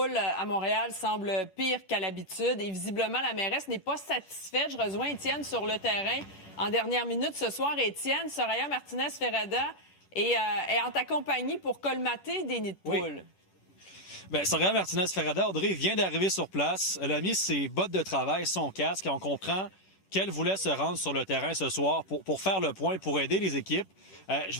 à Montréal semble pire qu'à l'habitude et visiblement, la mairesse n'est pas satisfaite. Je rejoins Étienne sur le terrain en dernière minute ce soir. Étienne, Soraya Martinez-Ferrada est en ta compagnie pour colmater des nids de poules. Oui. Bien, Soraya Martinez-Ferrada, Audrey, vient d'arriver sur place. Elle a mis ses bottes de travail, son casque, et on comprend qu'elle voulait se rendre sur le terrain ce soir pour faire le point, pour aider les équipes. Je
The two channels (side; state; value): right; late; 10 ms